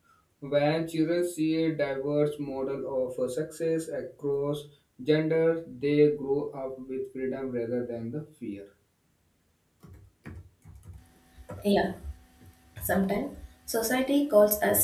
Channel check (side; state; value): both; identical; correlation 1.00